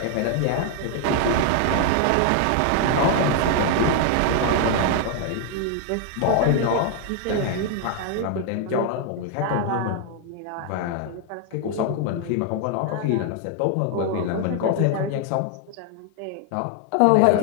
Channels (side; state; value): both; different; correlation 0.00